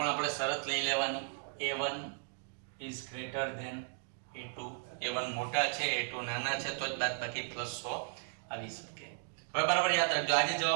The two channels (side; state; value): left; silent; 54 dB below the other